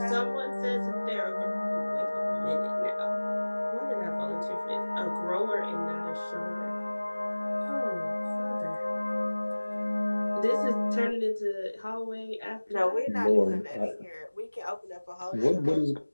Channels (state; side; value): inverted; both; correlation -1.00